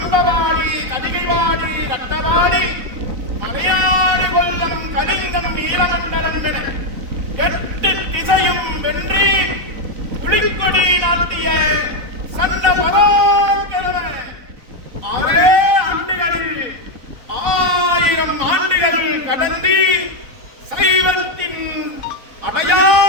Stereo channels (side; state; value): left; late; 3.9 ms